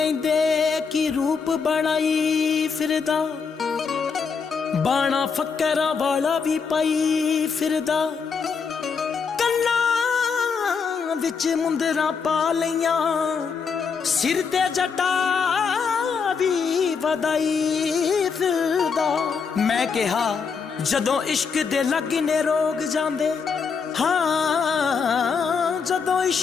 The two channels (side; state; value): right; quieter; 5.7 dB